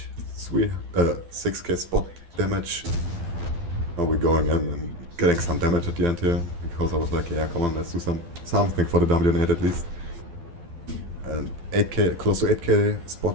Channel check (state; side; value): late; left; 12 ms